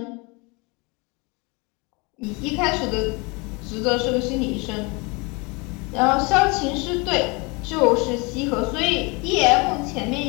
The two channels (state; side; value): quieter; right; 28.4 dB